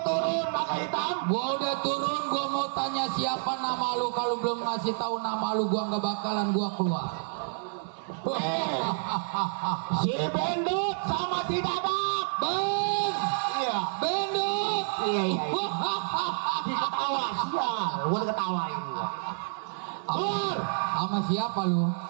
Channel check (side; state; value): left; silent; 59 dB below the other